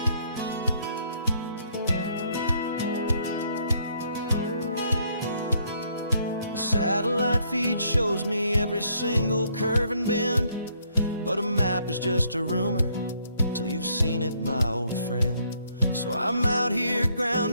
Satellite feed shows me every single curve and bend, but a map is just a rumor till you've seen it, my old friend. So I'm out here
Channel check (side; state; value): both; inverted; correlation -0.69